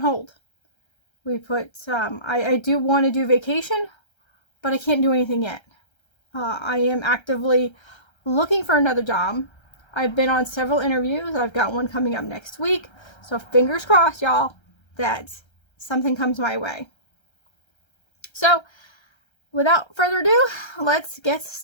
hold. We put, I do want to do vacation, but I can't do anything yet. I am actively looking for another job. I've been on several interviews. I've got one coming up next week. So fingers crossed, y'all, that something comes my way. So without further ado, let's get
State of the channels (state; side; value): late; right; 1.3 ms